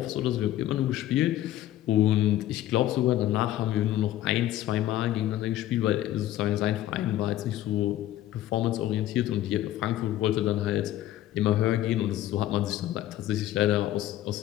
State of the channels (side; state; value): right; quieter; 13.6 dB